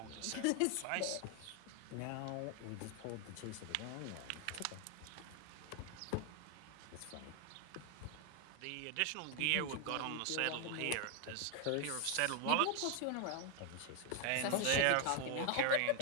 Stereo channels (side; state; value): both; different; correlation 0.00